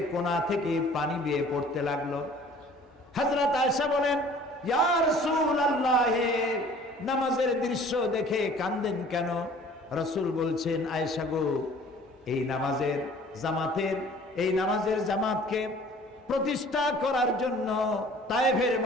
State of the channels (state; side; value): normal; both; correlation 0.50